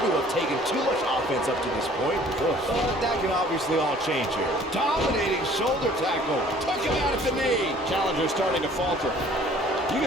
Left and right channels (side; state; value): both; normal; correlation 0.54